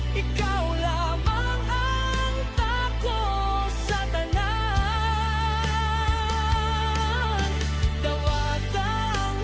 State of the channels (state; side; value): identical; both; correlation 1.00